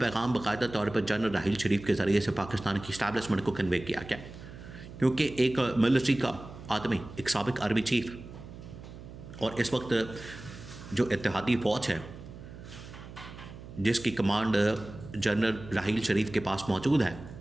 باقاعدہ طور پر جنرل راحیل شریف کے ذریعے سے پاکستان کی اسٹیبلشمنٹ کو کنوے کیا گیا، کیونکہ ایک ملٹری کا آدمی، ایک سابق آرمی چیف، اور اس وقت جو اتحادی فوج ہے جس کی کمانڈ جنرل راحیل شریف کے پاس موجود ہے،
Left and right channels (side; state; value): right; noise; hum, 15 dB below the sound